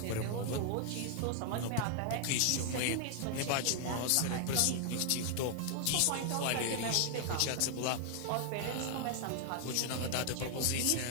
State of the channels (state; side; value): different; both; correlation 0.00